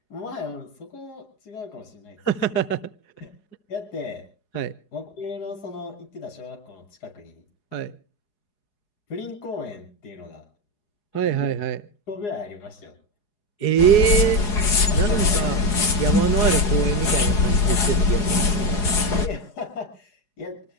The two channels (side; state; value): right; late; 4.8 ms